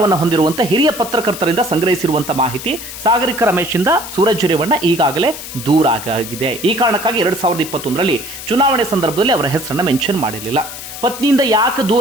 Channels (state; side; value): noise; left; hiss, 11 dB below the sound